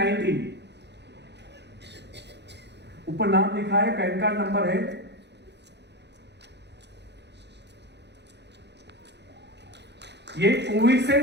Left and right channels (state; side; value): late; left; 0.50 ms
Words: ऊपर नाम लिखा है, पैन कार्ड नंबर है। ये कोविड से